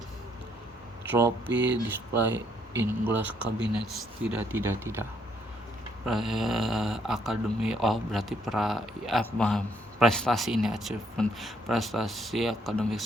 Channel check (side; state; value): both; normal; correlation 0.71